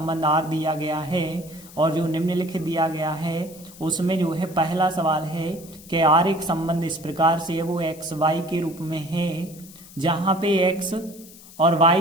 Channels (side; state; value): left; noise; hiss, 20 dB below the sound